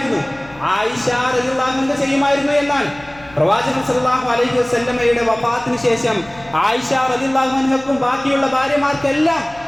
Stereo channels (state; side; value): noise; left; hum, 23 dB below the sound